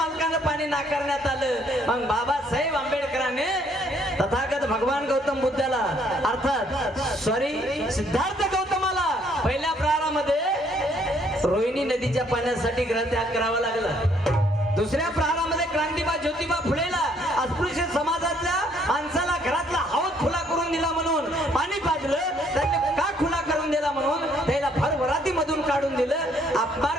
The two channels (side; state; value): both; normal; correlation 0.66